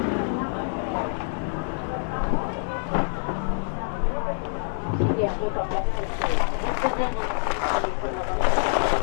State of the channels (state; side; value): silent; right; 57 dB below the other